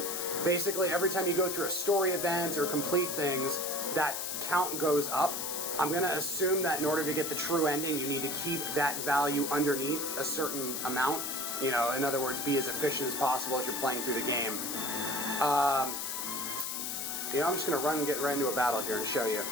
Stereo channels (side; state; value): left; noise; hiss, 3 dB below the sound